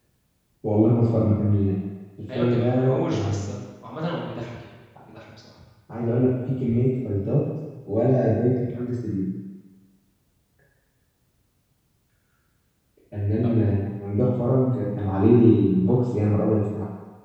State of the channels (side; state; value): both; identical; correlation 1.00